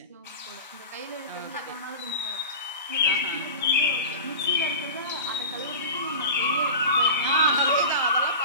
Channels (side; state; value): both; inverted; correlation -0.31